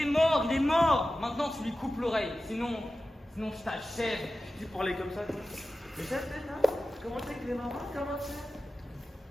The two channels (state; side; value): normal; both; correlation 0.94